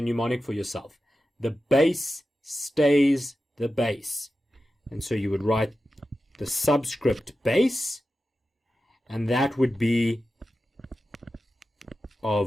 mnemonic for yourself. The base stays the base. And so you would write the subscript base, and that would be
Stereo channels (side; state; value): both; normal; correlation 0.92